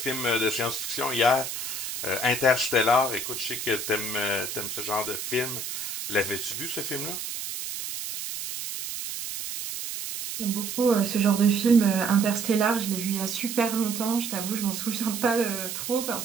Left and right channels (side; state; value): right; noise; hiss, 6 dB below the sound